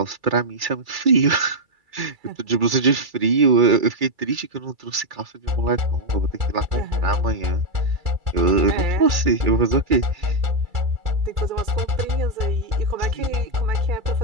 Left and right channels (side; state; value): left; late; 2.3 ms